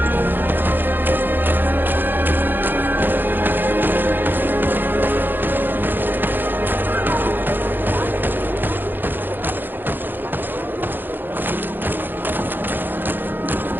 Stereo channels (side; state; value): left; late; 0.094 ms